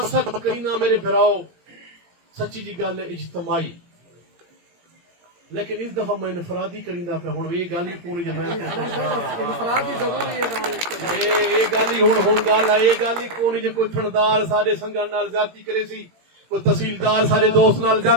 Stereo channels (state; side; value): late; left; 17 ms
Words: کرینا میرے بھراؤ سچی جی گل ہے اجتماعی، لیکن اس دفعہ میں انفرادی کریندا پہ ہوں یہ گل ہی پوری جماعت انفرادی ضروری ہے یہ گل ہی ہوں گل ہے، یہ گل ہی کون جی کوئی تھندار سارے سنگھن نال زیادتی کرے سی، کوئی تحصیلدار سارے دوست نال